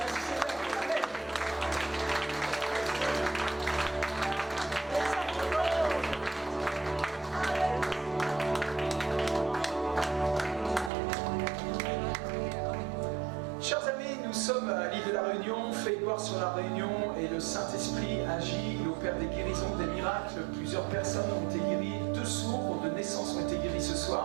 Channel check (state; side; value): drops out; left; at 10.9 s